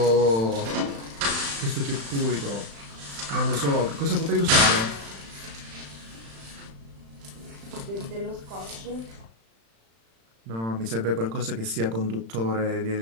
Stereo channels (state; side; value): late; left; 35 ms